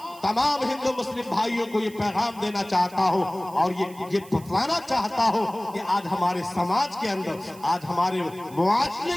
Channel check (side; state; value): right; noise; hiss, 22 dB below the sound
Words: तमाम हिंदू मुस्लिम भाइयों को ये पैगाम देना चाहता हूँ और ये बताना चाहता हूँ कि आज हमारे समाज के अंदर, आज हमारे मुआशरे